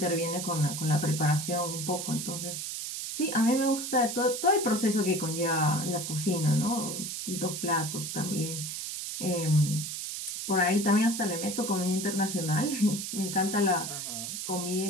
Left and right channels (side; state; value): right; noise; hiss, 5 dB below the sound